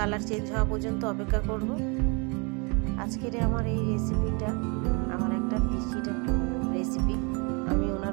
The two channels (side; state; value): left; quieter; 31.8 dB